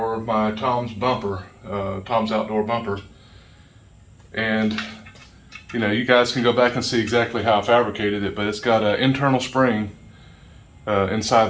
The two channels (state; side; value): identical; both; correlation 1.00